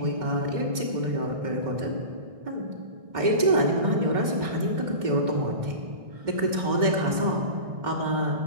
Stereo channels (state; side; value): late; left; 2.1 ms